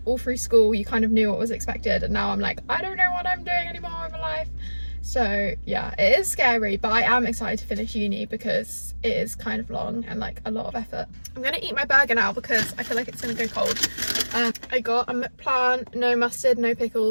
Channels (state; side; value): inverted; both; correlation -1.00